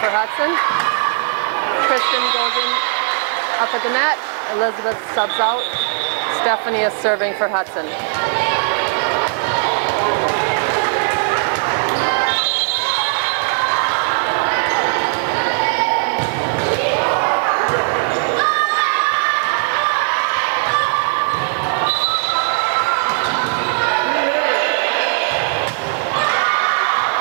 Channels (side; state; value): left; silent; 59 dB below the other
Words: Hudson. Kristen goes in up at the net. Elizabeth subs out. Stephanie is serving for Hudson.